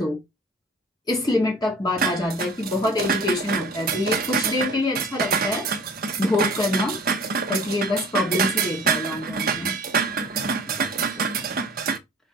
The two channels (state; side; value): normal; both; correlation 0.45